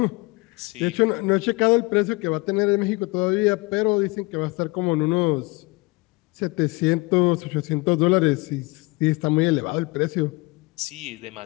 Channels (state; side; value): quieter; right; 25.3 dB